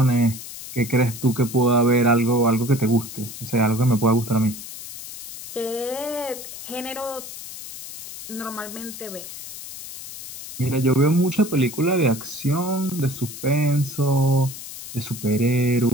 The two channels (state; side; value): noise; left; hiss, 12 dB below the sound